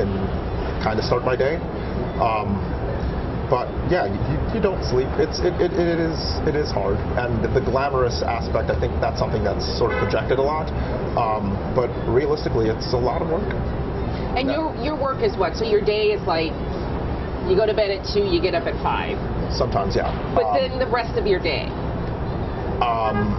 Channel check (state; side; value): identical; both; correlation 1.00